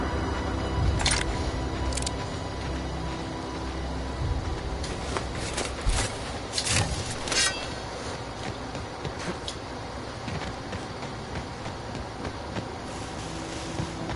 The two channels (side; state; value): both; identical; correlation 1.00